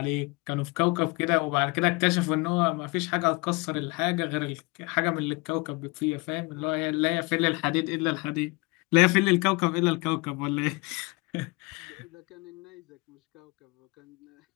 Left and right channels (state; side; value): quieter; right; 26.6 dB